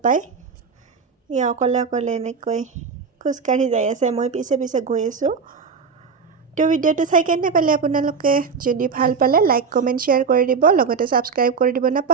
পায় সি অকলে অকলে এনেকৈ খোজকাঢ়ি যাই আছে মই পিছে পিছে গৈ আছোঁ তো ভিডিঅ'টো চাই কেনে পালে আপোনালোকে যদি ভাল পালে লাইক কমেণ্ট শ্বেয়াৰ কৰি দিব লগতে ছাবস্ক্ৰাইব কৰি দিব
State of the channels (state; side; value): quieter; left; 5.5 dB